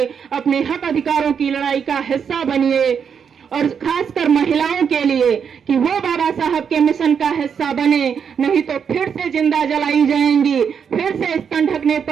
अपने हक अधिकारों की लड़ाई का हिस्सा बनिए और खासकर महिलाओं के लिए कि वो बाबा साहब के मिशन का हिस्सा बने, नहीं तो फिर से जिंदा जलाई जाएंगी, फिर से स्तन ढकने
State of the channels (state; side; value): quieter; left; 7.1 dB